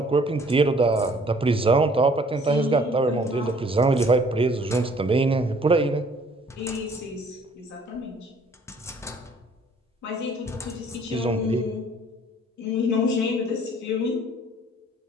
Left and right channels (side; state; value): both; normal; correlation 0.57